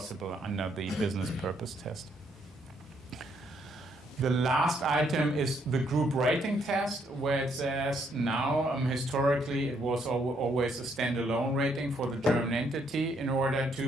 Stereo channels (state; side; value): normal; both; correlation 0.71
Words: under the business purpose test. The last item is the group rating test, where it says now, historically, it was always a standalone rating for the German entity in order